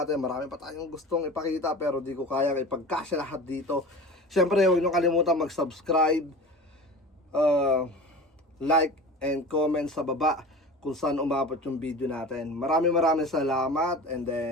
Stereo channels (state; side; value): normal; both; correlation 0.35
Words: Marami pa tayong gustong ipakita pero di ko kaya ipagkasya lahat dito. Siyempre, huwag nyo kalimutan mag-subscribe, like, and comment sa baba kung saan umabot yung video natin. Maraming salamat and